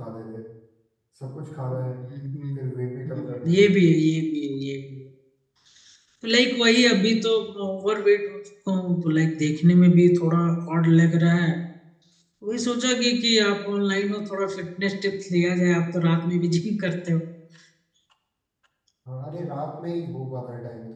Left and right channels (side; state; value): both; identical; correlation 1.00